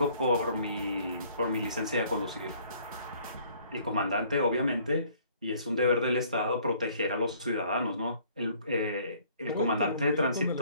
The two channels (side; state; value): both; inverted; correlation -0.59